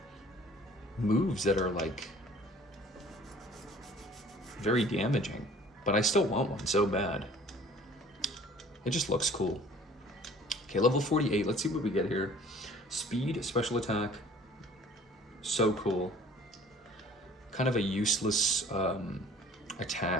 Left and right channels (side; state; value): both; normal; correlation 0.51